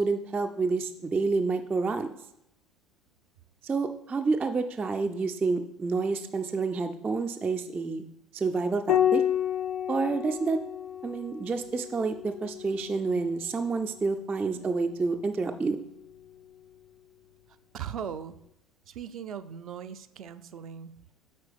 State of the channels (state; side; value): normal; both; correlation 0.76